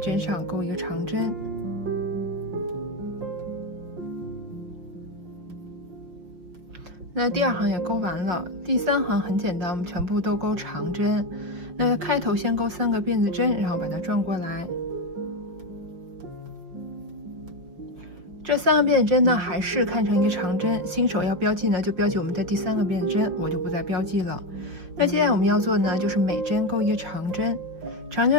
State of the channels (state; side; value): late; left; 5.8 ms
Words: 上钩一个长针。那第2行也钩完了，第3行很简单，我们全部都钩长针。那开头先钩3个辫子针，然后把它转过来。这3个辫子针呢，还是看成一个长针。新手要标记呢，就标记我们的第3个辫子针，我就不再标记了。那接下来我们要做呢，就是每针钩一个长针。长针